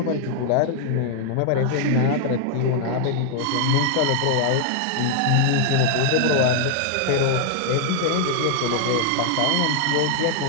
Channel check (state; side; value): different; both; correlation 0.00